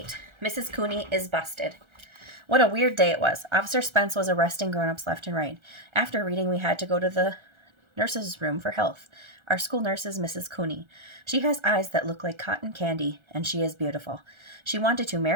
Mrs. Cooney is busted. What a weird day it was. Officer Spence was arresting grown-ups left and right. After reading, we had to go to the nurse's room for health. Our school nurse is Mrs. Cooney. She has eyes that look like cotton candy, and she is beautiful. She wanted to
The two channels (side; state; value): left; late; 1.3 ms